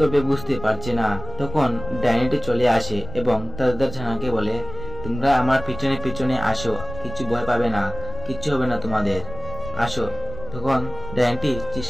বুঝতে পারছে না। তখন ডাইনিটি চলে আসে এবং তাদের ছানাকে বলে, তোমরা আমার পিছনে পিছনে আসো, কিছু ভয় পাবে না, কিচ্ছু হবে না তোমাদের, আসো। তখন ডাইনিটি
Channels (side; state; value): left; noise; rumble, 11 dB below the sound